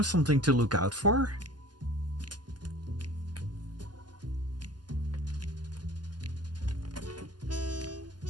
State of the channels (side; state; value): left; late; 0.70 ms